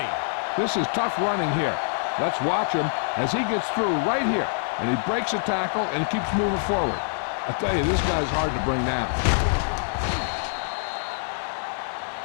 This is tough running here. Let's watch him as he gets through right here, and he breaks a tackle and keeps moving forward. I'll tell you, this guy's hard to bring down.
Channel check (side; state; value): right; silent; digital silence